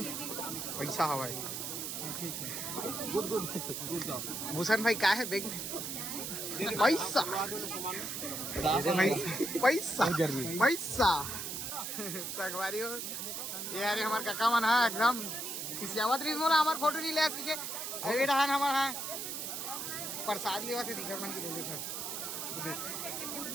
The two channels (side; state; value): right; noise; hiss, 5 dB below the sound